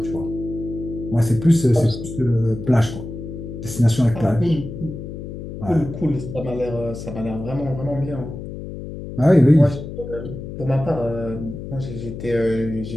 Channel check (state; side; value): noise; left; hum, 9 dB below the sound